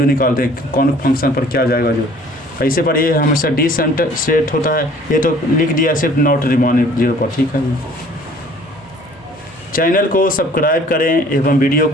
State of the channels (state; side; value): normal; both; correlation 0.53